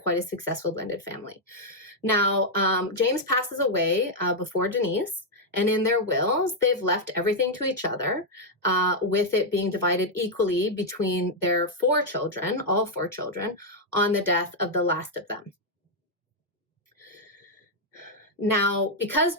a successful blended family. Now, James passes away before Denise, and in their wills, they've left everything to each other, with it being divided equally between their 4 children, all 4 children, on the death of the last of them. Now, because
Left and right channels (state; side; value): normal; both; correlation -0.02